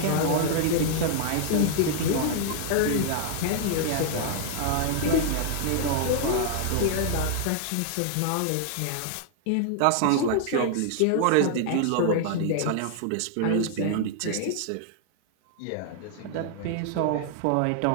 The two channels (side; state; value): both; different; correlation 0.00